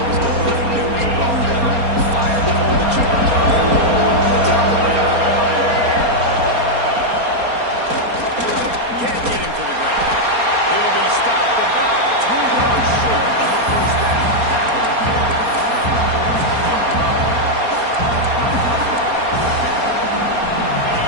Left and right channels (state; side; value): late; left; 4.3 ms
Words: was going on. He knew it was well done. Fired, pulled the trigger, came down the top of the ground. Can't get him to the ground. He'll be stopped about 2 yards short of the first down.